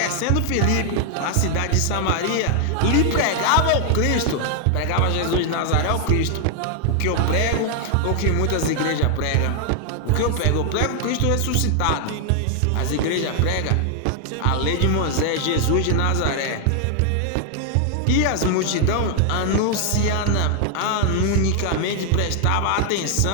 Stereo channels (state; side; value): different; both; correlation 0.00